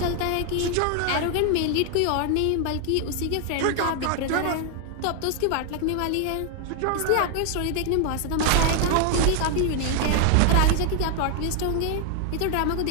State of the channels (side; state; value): both; different; correlation 0.00